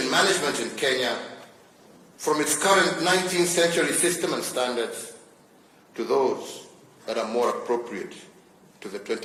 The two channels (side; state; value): both; identical; correlation 1.00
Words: management in Kenya from its current 19th century system and standards to those that are more appropriate to the